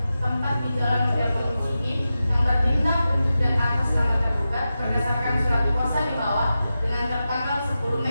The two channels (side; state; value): both; inverted; correlation -0.92